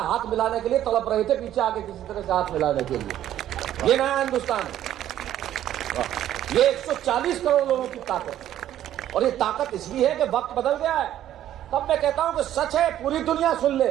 हाथ मिलाने के लिए तड़प रहे थे, पीछे आके किसी तरह से हाथ मिलाने के लिए। ये नया हिंदुस्तान है, ये 140 करोड़ लोगों की ताकत। और ये ताकत इसलिए है कि वक्त बदल गया है। तब मैं कहता हूं कि सच है, पूरी दुनिया सुन ले,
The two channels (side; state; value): left; quieter; 11.9 dB